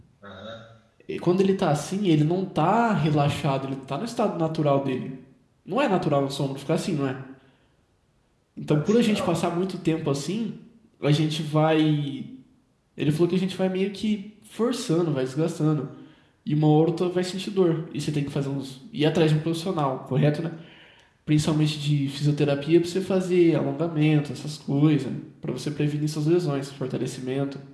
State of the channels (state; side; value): identical; both; correlation 1.00